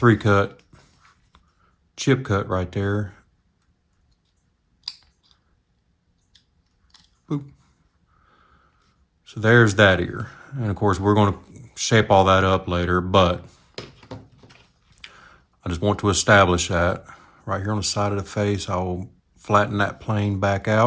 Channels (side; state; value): both; identical; correlation 1.00